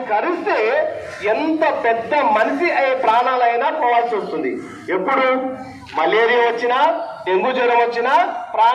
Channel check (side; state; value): both; identical; correlation 1.00